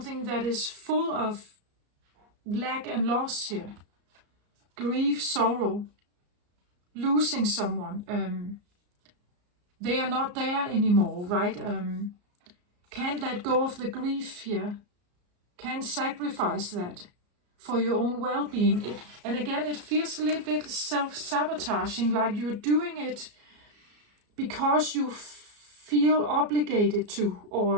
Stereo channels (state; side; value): late; left; 34 ms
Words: that is full of lack and loss here. Grief, sorrow, losing someone. They are not there anymore, right? Can't let go of the grief here. Can't sacrifice that for your own well-being. And again, it feels a little bit self-sabotaging, like you're doing it because you feel obligated to,